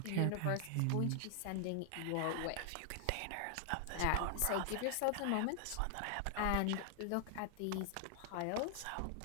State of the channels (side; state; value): both; different; correlation 0.00